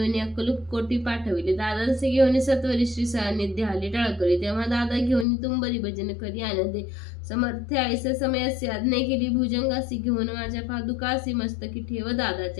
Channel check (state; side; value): drops out; right; at 5.2 s